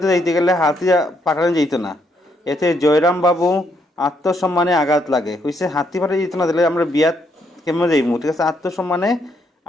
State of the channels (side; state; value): both; normal; correlation 0.74